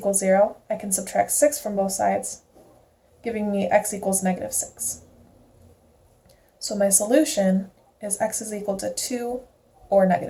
0, I can subtract 6 from both sides, giving me x equals negative 6. So my solution is x is equal to 2 or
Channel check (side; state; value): both; identical; correlation 1.00